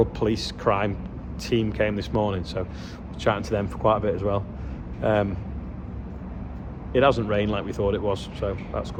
police crime team came this morning, so we're chatting to them for quite a bit as well. It hasn't rained like we thought it was, so that's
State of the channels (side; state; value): both; identical; correlation 1.00